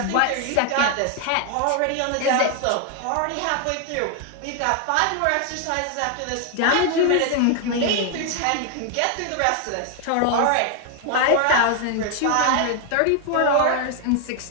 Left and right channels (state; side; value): different; both; correlation 0.00